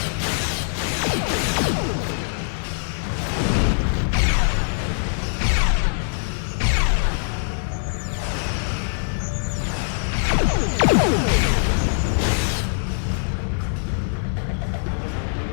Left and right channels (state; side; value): silent; right; 59 dB below the other